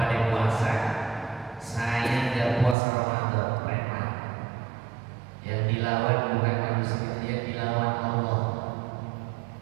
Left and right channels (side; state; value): left; drops out; at 2.8 s